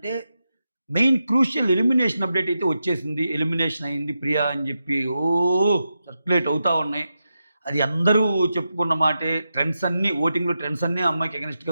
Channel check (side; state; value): both; inverted; correlation -0.88